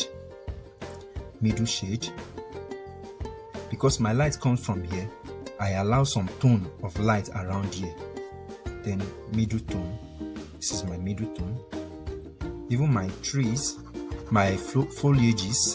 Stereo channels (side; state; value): both; identical; correlation 1.00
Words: because my light comes from here, I allow some tone of light around here. Then middle tone. This is my middle tone. Even my trees, my